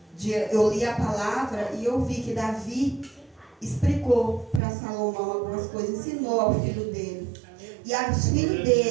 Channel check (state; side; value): drops out; left; at 4.6 s